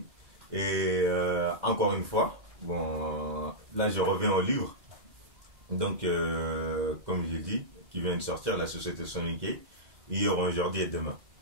Et encore une fois, bon, là je reviens au livre. Donc, comme j'ai dit, qui vient de sortir, La Société Soniquée, hier, aujourd'hui et demain.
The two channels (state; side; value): late; left; 2.0 ms